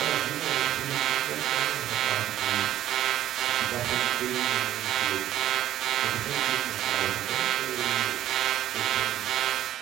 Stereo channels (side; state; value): left; quieter; 12.6 dB